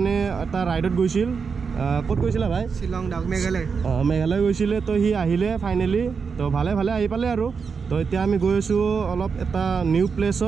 এটা ৰাইডত গৈছিল। ক'ত গৈছিলা ভাই? শিলং ডাউক মেঘালয়। মেঘালয় গৈছিলে। তো হি আহিলে ফাইনেলি। তো ভালে ভালে আহি পালে আৰু। তো এতিয়া আমি গৈ আছো অলপ এটা নিউ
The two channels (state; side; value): quieter; left; 5.6 dB